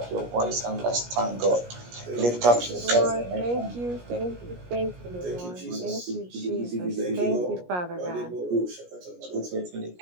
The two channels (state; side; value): late; left; 17 ms